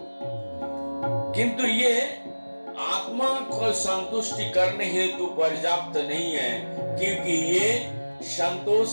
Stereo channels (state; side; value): inverted; both; correlation -1.00